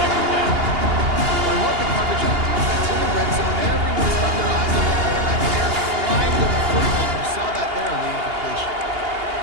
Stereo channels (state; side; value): late; left; 2.8 ms